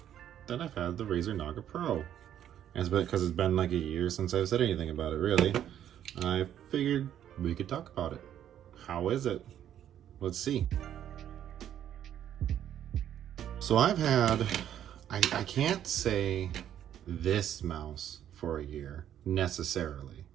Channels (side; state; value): left; quieter; 10.5 dB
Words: that I've had the Razer Naga Pro. And it's been because it's been like a year since I've said anything about it, really. I figured we could talk about it. How is it? Let's see. So I can't say this mouse for a year necessarily,